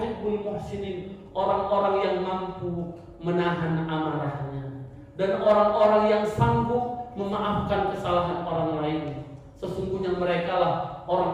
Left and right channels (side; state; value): both; identical; correlation 1.00